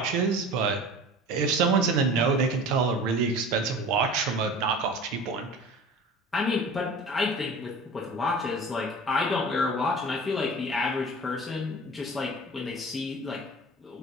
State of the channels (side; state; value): both; normal; correlation 0.39